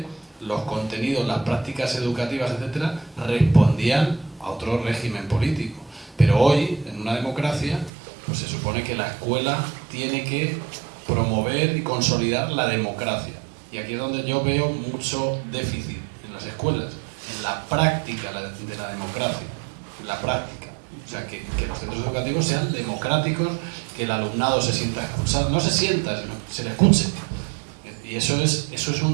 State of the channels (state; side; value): drops out; left; at 7.9 s